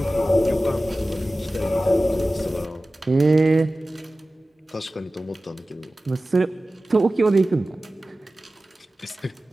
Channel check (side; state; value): both; normal; correlation 0.96